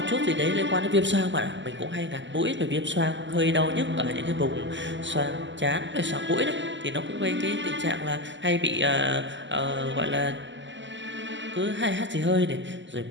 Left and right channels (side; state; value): left; late; 0.54 ms